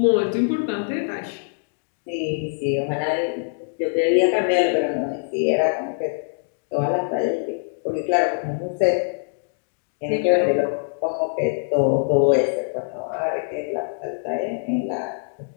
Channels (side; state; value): right; silent; digital silence